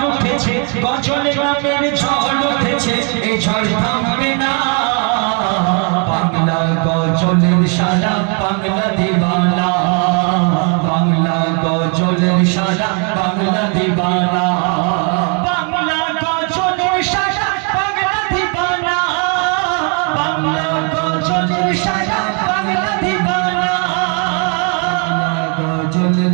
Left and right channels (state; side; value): quieter; left; 37.3 dB